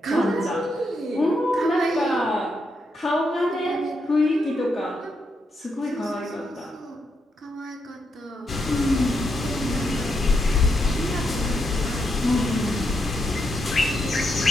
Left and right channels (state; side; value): normal; both; correlation 0.81